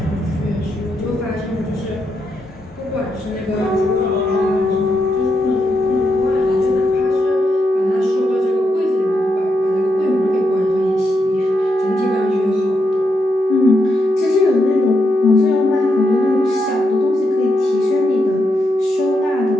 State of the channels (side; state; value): both; normal; correlation 0.82